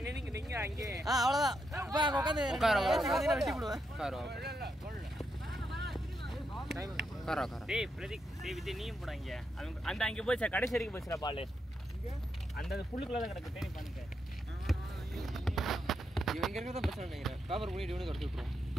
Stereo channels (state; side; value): normal; both; correlation 0.82